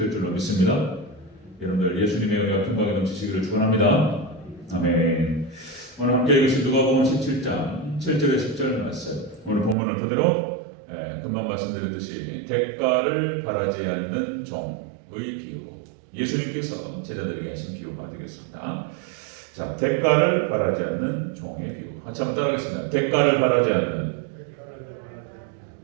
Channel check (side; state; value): left; drops out; at 9.8 s